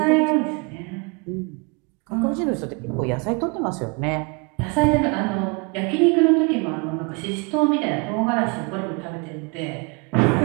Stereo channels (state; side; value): quieter; left; 31.5 dB